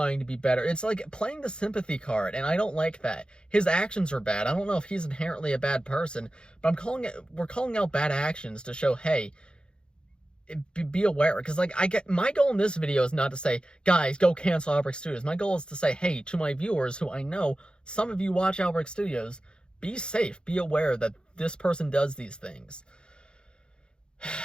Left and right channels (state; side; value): late; right; 0.051 ms